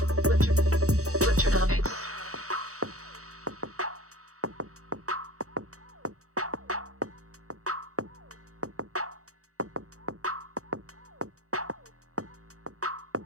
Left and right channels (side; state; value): left; late; 0.65 ms